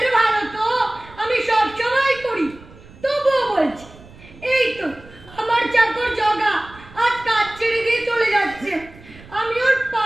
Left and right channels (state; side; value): noise; right; rumble, 21 dB below the sound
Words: ভালো তো আমি সব সময় করি, তবুও বলছি। এই তো আমার চাকর জগা আজ কাজ ছেড়ে দিয়ে চলে যাচ্ছে। আমি ওর